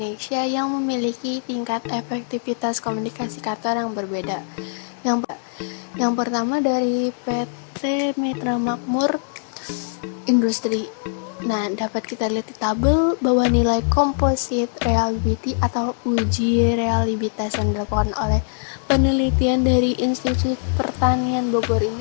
yang memiliki tingkat efektivitas komunikasi kantor yang berbeda. Yang pertama dari PT Mitra Makmur Industri. Nah, dapat kita lihat di tabel bahwa nilai composite reliability atau uji reliabilitas yang dilakukan oleh penelitian dari Institut Pertanian Bogor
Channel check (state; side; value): silent; right; digital silence